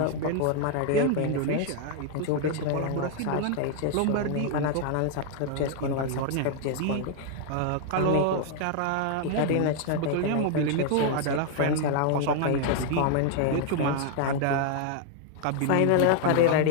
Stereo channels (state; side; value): different; both; correlation 0.00